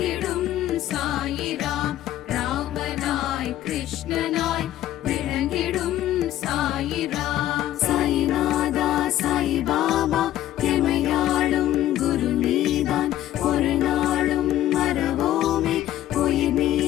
சாயிராம். ராமனாய் கிருஷ்ணனாய் விளங்கிடும் சாயிராம். சாயிநாதா சாய் பாபா எமையாளும் குரு நீதான். ஒரு நாளும் மறவோமே உயிர்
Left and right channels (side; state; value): right; quieter; 13.2 dB